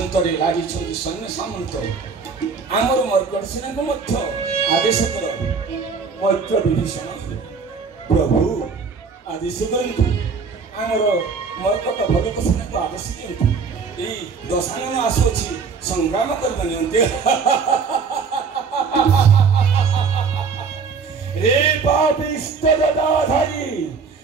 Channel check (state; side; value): quieter; left; 5.3 dB